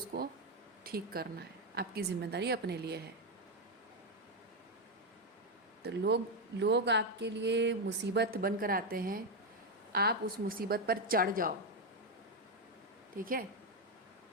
ठीक करना है, आपकी जिम्मेदारी अपने लिए है। तो लोग आपके लिए मुसीबत बनकर आते हैं, आप उस मुसीबत पर चढ़ जाओ, ठीक है।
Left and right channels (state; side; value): normal; both; correlation 0.06